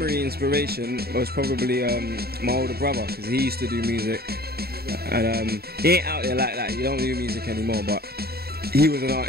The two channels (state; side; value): late; left; 0.45 ms